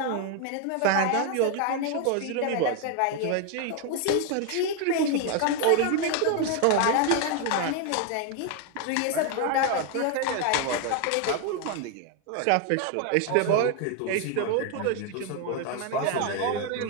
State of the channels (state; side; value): different; both; correlation 0.01